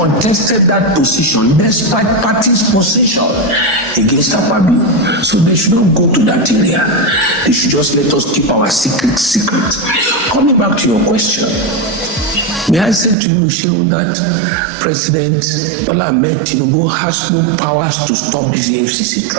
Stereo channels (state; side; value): drops out; left; at 13.2 s